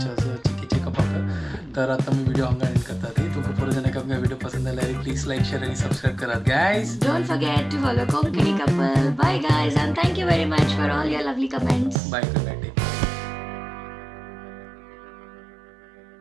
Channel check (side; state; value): left; drops out; at 12.0 s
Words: आसा चेकअपाक तर आतां आमी व्हिडिओ हांगा एंड करतात तुमकां परत जेन्ना आमकां व्हिडिओ पसंद आयल्यार प्लीज लायक शेअर आनी सबस्क्राईब करात guys Don't forget to follow Konkani Couple. Bye guys and thank you very much for all your lovely comments. Bye good night